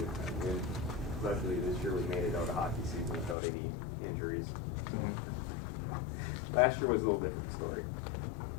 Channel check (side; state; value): right; drops out; at 3.4 s